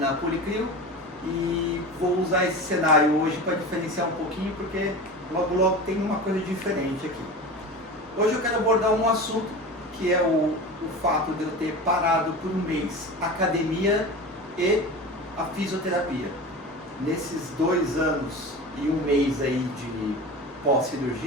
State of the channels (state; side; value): normal; both; correlation 0.31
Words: Policlio e vou usar esse cenário hoje para diferenciar um pouquinho, porque logo tem uma coisa diferente aqui. Hoje eu quero abordar um assunto que é o fato de eu ter parado por um mês a academia e a fisioterapia. Nesses 2 anos e um mês aí de